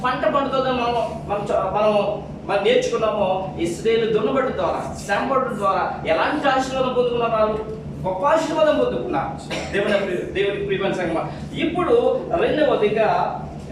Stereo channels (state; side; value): identical; both; correlation 1.00